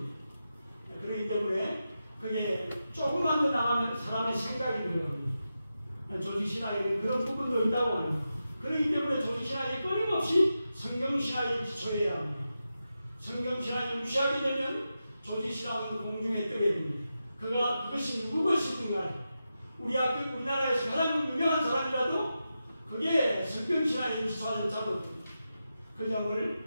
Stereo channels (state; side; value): inverted; both; correlation -0.90